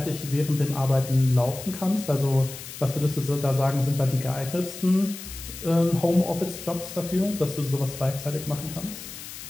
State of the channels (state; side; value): noise; left; hiss, 12 dB below the sound